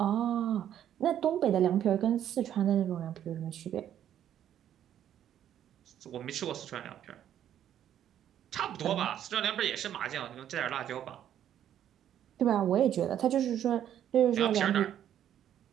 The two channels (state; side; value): quieter; left; 10.5 dB